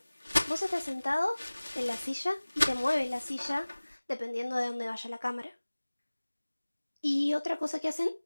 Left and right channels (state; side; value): inverted; both; correlation -1.00